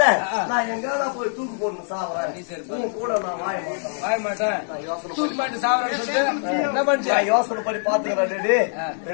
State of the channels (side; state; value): right; silent; 63 dB below the other